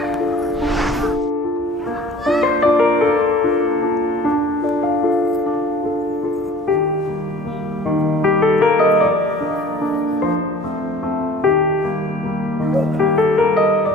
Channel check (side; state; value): both; normal; correlation 0.48